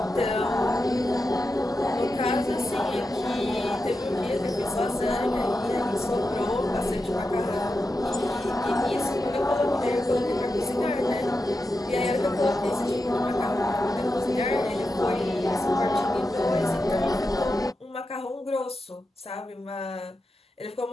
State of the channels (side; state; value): both; normal; correlation 0.89